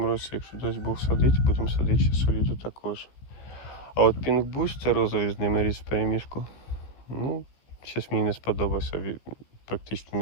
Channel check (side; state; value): right; late; 15 ms